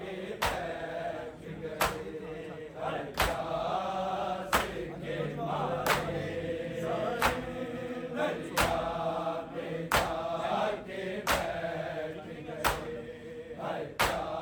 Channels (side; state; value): both; identical; correlation 1.00